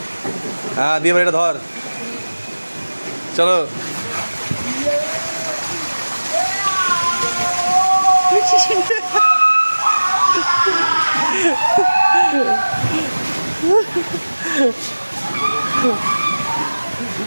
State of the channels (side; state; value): both; inverted; correlation -1.00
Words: হ্যাঁ দিয়ে এটা ধর, চলো।